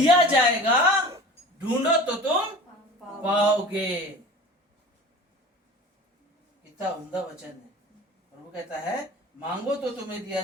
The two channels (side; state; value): both; normal; correlation 0.39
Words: जाएगा, ढूंढो तो तुम पाओगे। कितना उम्दा वचन है। और वो कहता है, मांगो तो तुम्हें दिया